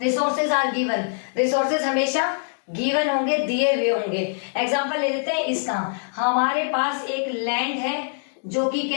आर गिवन, रिसोर्सेज हमेशा गिवन होंगे, दिए हुए होंगे। एग्जाम्पल ले लेते हैं इसका, हमारे पास एक लैंड है जो कि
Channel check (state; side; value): silent; right; digital silence